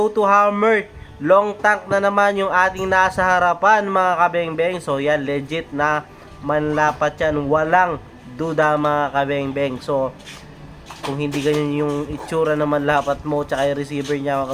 hammer. Long tank na naman yung ating nasa harapan mga kabengbeng. So, yan, legit na manlapat yan. Walang duda mga kabengbeng. So, kung hindi ganyan yung itsura ng manlapat mo tsaka yung receiver niya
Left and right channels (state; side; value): identical; both; correlation 1.00